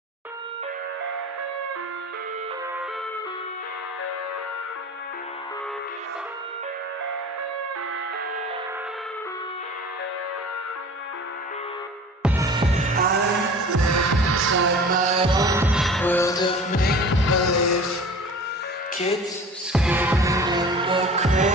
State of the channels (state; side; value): normal; both; correlation 0.41